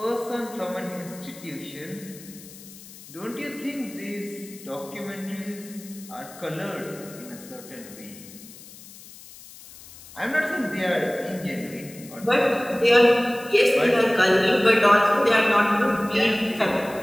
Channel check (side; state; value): left; noise; hiss, 18 dB below the sound